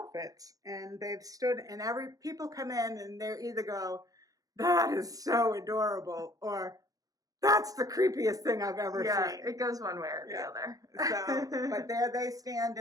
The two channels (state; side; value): late; left; 0.17 ms